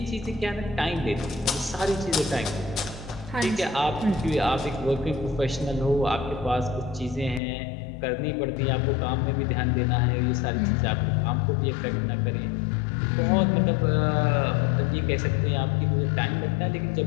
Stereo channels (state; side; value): drops out; right; at 7.4 s